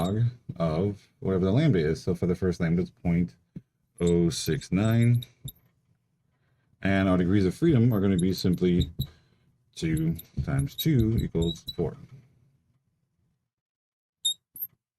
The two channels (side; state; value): both; identical; correlation 1.00